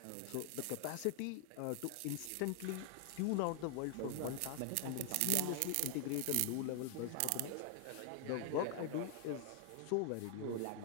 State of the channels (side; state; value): both; different; correlation 0.00